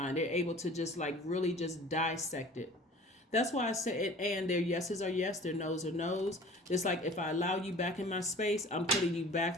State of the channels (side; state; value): both; normal; correlation 0.45